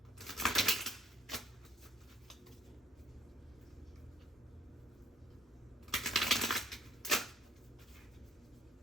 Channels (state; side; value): normal; both; correlation 0.59